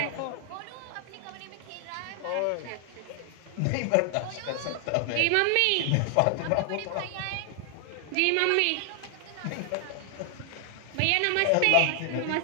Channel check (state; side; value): different; both; correlation 0.00